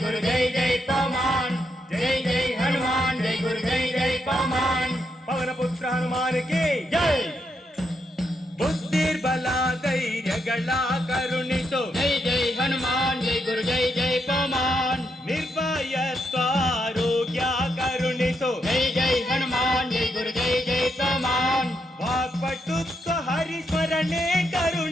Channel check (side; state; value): both; normal; correlation 0.80